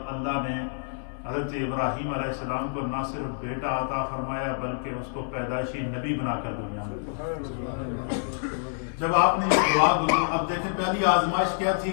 اللہ نے حضرت ابراہیم علیہ السلام کو نہ صرف بیٹا عطا فرمایا بلکہ اس کو پیدائشی نبی بنا کر دنیا میں۔ جب آپ نے یہ دعا اب دیکھیں پہلی آزمائش کیا تھی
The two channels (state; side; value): silent; right; digital silence